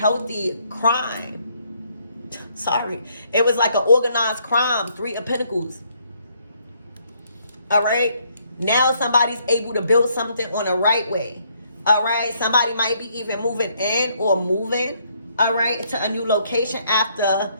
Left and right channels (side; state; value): both; inverted; correlation -0.69